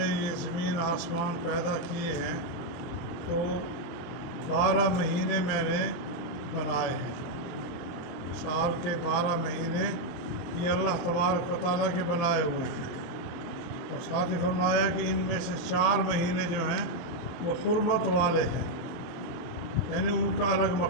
یہ زمین آسمان پیدا کیے ہیں تو 12 مہینے میں نے بنائے ہیں۔ سال کے 12 مہینے یہ اللہ تبارک و تعالیٰ کے بنائے ہوئے ہیں، اور ساتھ ہی فرمایا کہ ان میں سے 4 مہینے جو ہیں وہ حرمت والے ہیں، یعنی ان کا الگ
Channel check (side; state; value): right; late; 23 ms